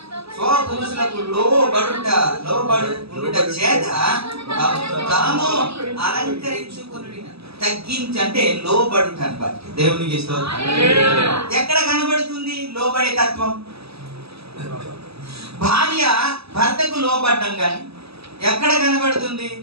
స్వపురుషులకు లోబడుట చేత తాము అలంకరించుకుని తగ్గించి అంటే లోబడుట అనమాట. దేవునికి ఎక్కడ కనబడుతుంది లోబడే తత్వం? భార్య భర్తకు లోబడ్డం కానీ ఎక్కడ కనబడుతుంది?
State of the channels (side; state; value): left; late; 0.78 ms